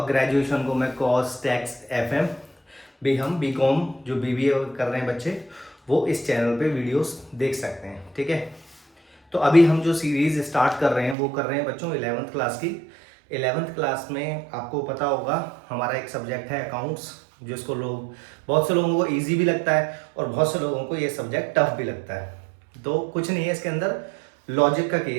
ग्रेजुएशन को मैं कॉस्ट टैक्स एफएम भी, हम बीकॉम जो बीबीए कर रहे हैं बच्चे, वो इस चैनल पे वीडियोस देख सकते हैं। ठीक है, तो अभी हम जो सीरीज़ स्टार्ट कर रहे हैं वो कर रहे हैं बच्चों 11th क्लास की। 11th क्लास में आपको पता होगा हमारा एक सब्जेक्ट है अकाउंट्स, जिसको लोग, बहुत से लोगों को इजी भी लगता है और बहुत से लोगों को ये सब्जेक्ट टफ भी लगता है। तो कुछ नहीं है इसके अंदर, लॉजिक का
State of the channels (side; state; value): left; drops out; at 11.2 s